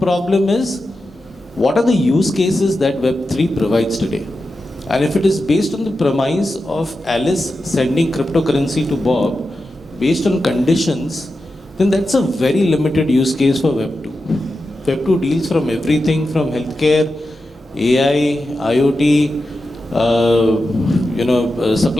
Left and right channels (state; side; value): normal; both; correlation 0.90